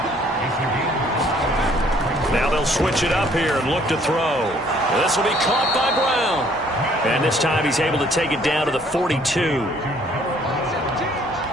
Now they'll switch it up here and look to throw. This will be caught by Brown. And this time he's able to take it down to the 42.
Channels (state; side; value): normal; both; correlation 0.61